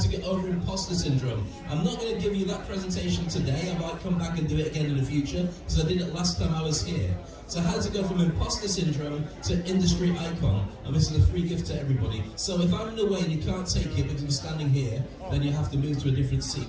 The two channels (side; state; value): both; identical; correlation 1.00